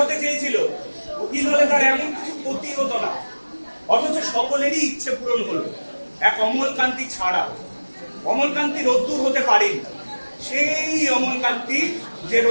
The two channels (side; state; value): both; inverted; correlation -1.00